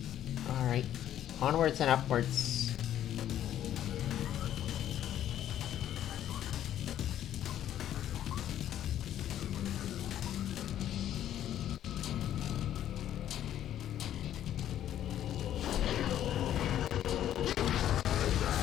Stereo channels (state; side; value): quieter; right; 11.3 dB